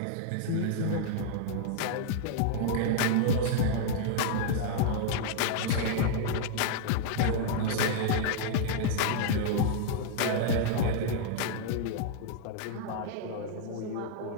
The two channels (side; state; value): both; different; correlation -0.01